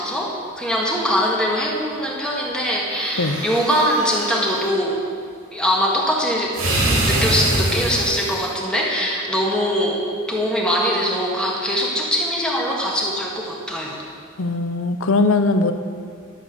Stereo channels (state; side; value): normal; both; correlation 0.37